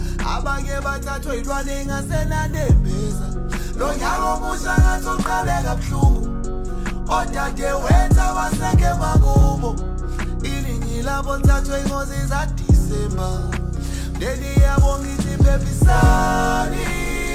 abanye bathathwe ilwane engasenanembeza. Lo nyaka omusha ngathi uqale kabuhlungu, odade wenza baseke makubo. Iningi labo lithathwe ingozi zaDisemba, mndeni yabo ngithi phephisani,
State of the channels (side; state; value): both; identical; correlation 1.00